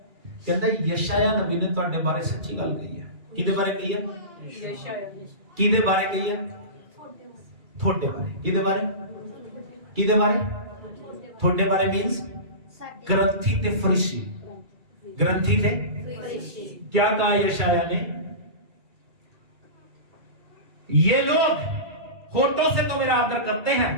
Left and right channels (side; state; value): left; late; 2.3 ms